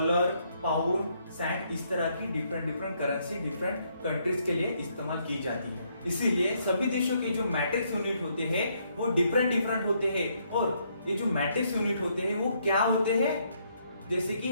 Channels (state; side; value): inverted; both; correlation -0.72